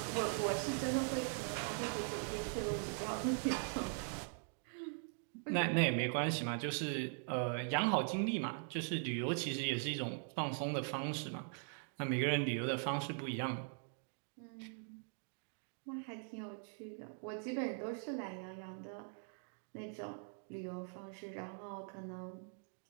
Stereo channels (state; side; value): silent; left; 50 dB below the other